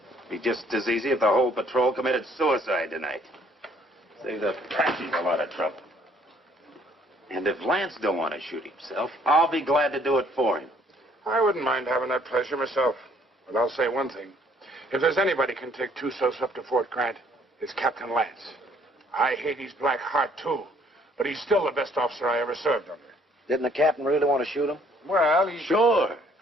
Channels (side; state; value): both; normal; correlation 0.63